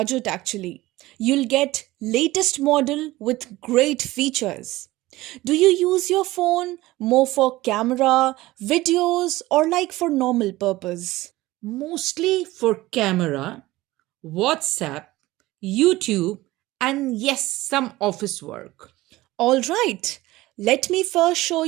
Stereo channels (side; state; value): left; quieter; 18.2 dB